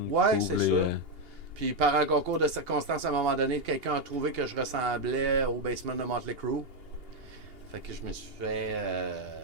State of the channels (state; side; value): late; left; 2.8 ms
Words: Ouais, cool, c'est les, ça. Puis par un concours de circonstances, à un moment donné, quelqu'un a trouvé que je ressemblais au basement de Motley Crue. Fait que je me suis fait